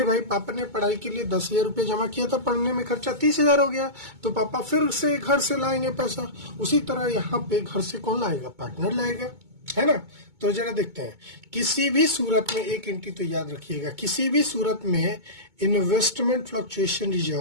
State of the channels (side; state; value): left; late; 2.2 ms